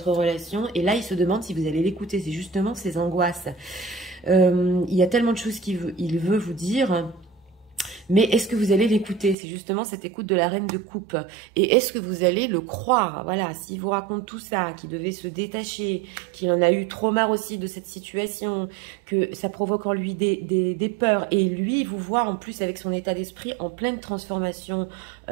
relation. Et là, il se demande si vous allez l'écouter. C'est justement ses angoisses. Il y a tellement de choses qu'il veut vous dire. Mais est-ce que vous allez l'écouter? C'est justement cette écoute de la reine de coupe. Et est-ce que vous allez le croire? Voilà, s'il vous raconte tout ça, qu'il devait se détacher, qu'il en a eu trop marre aussi de cette situation, que ça provoque en lui des peurs. Et lui, il vous voit en plus avec son état d'esprit en pleine transformation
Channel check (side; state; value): left; drops out; at 9.3 s